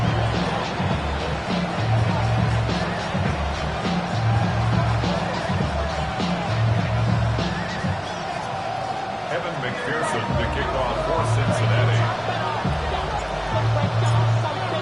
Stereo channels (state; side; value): identical; both; correlation 1.00